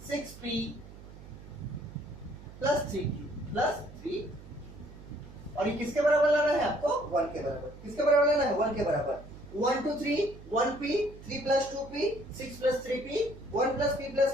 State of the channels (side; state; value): right; noise; hum, 17 dB below the sound